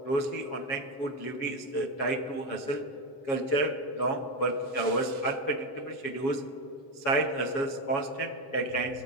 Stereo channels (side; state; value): right; late; 7.3 ms